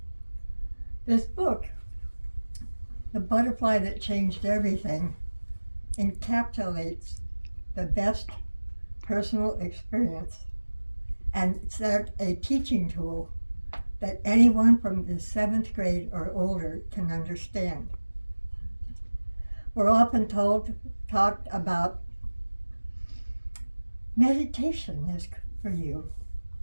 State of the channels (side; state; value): both; inverted; correlation -1.00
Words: This book, The Butterfly That Changed Everything, encapsulates the best personal experience, and it's a teaching tool that anyone from the 7th grade or older can understand. We're often talked about meditation is for you.